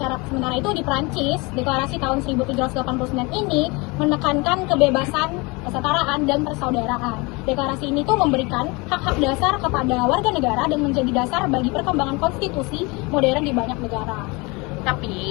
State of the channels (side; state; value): right; quieter; 26.6 dB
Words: itu di Prancis, deklarasi tahun 1789 ini menekankan kebebasan, kesetaraan, dan persaudaraan. Deklarasi ini tuh memberikan hak-hak dasar kepada warga negara dan menjadi dasar bagi perkembangan konstitusi modern di banyak negara.